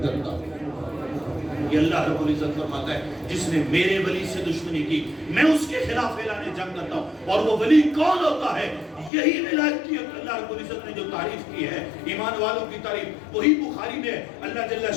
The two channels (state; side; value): drops out; right; at 9.1 s